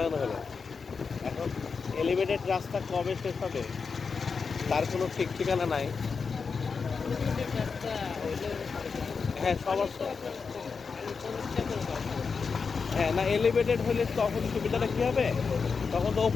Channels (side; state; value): right; quieter; 5.2 dB